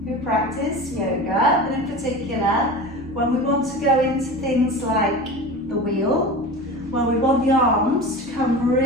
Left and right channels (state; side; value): normal; both; correlation 0.31